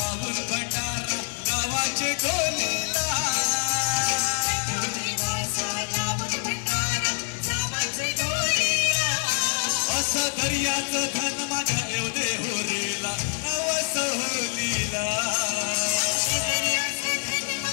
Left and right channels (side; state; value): right; silent; digital silence